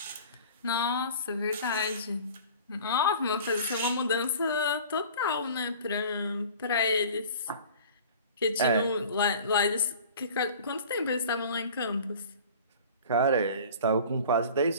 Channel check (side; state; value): both; inverted; correlation -0.44